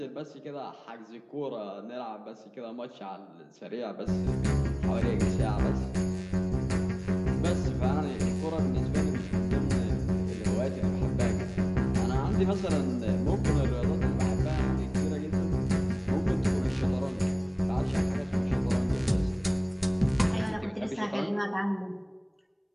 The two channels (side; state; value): both; identical; correlation 1.00